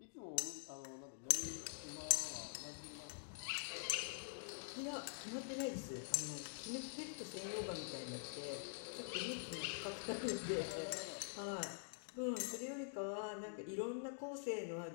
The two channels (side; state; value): right; silent; digital silence